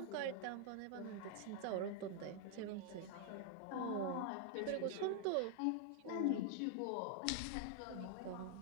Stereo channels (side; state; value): both; different; correlation 0.00